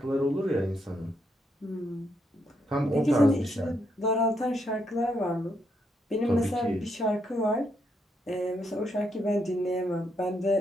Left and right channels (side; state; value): both; normal; correlation 0.78